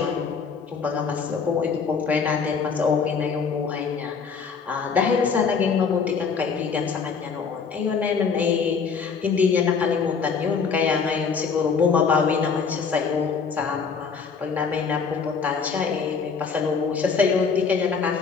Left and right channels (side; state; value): right; quieter; 5.6 dB